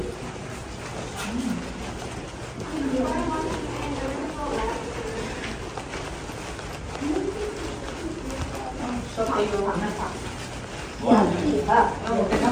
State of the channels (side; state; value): both; identical; correlation 1.00